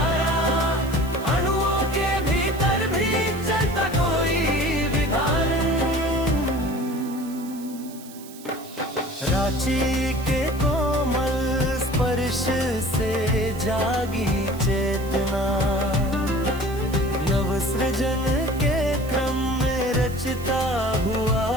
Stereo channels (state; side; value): noise; right; hiss, 19 dB below the sound